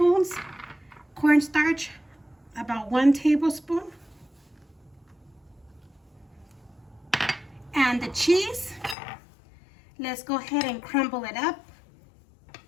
Cornstarch, about 1 tablespoon. And the cheese, Let's go ahead and crumble it up.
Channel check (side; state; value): right; drops out; at 9.0 s